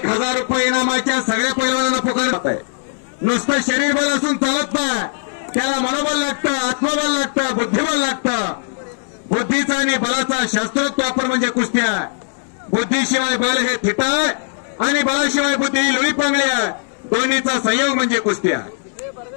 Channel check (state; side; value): silent; right; digital silence